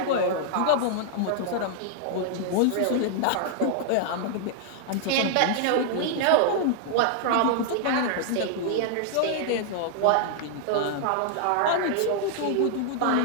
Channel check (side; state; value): both; different; correlation 0.00